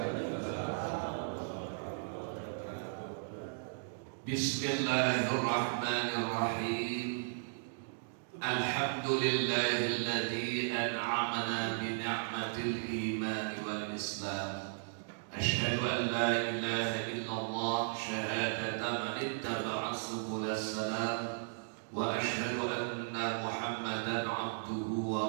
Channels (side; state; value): left; silent; digital silence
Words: Bismillahirrahmanirrahim. Alhamdulillahilladzi an'amana bi ni'matil iman wal islam. Asyhadu an la ilaha illallah syahadatan man ittaba'a subulas salam. Wa asyhadu anna Muhammadan abduhu